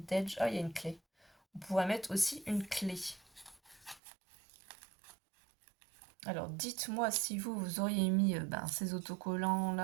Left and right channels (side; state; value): left; drops out; at 4.0 s